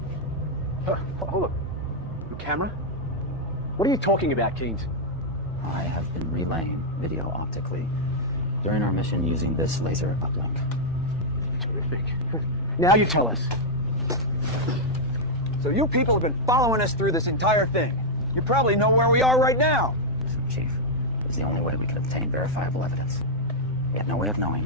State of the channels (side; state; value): both; normal; correlation -0.04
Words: Hold up. The camera? What are you talking about, Keynes? I have been relaying video optically during our mission using this laser uplink. Terrific. Now you tell us. So you people have been following us through this entire thing. You probably know where we are right now. Chief, it was the only way we could obtain verifiable evidence. We had no way of knowing